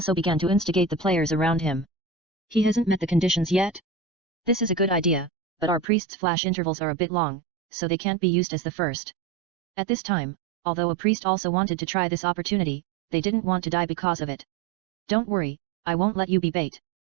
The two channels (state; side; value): drops out; left; at 5.9 s